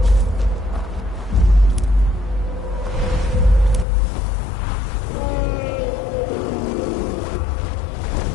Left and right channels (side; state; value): right; drops out; at 3.9 s